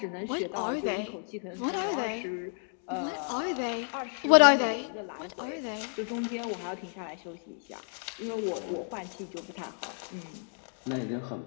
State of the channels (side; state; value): right; silent; 57 dB below the other